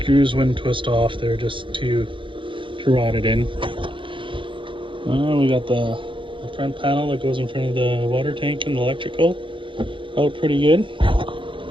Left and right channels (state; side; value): late; left; 0.25 ms